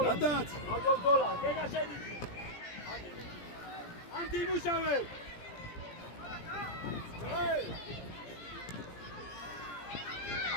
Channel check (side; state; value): right; late; 17 ms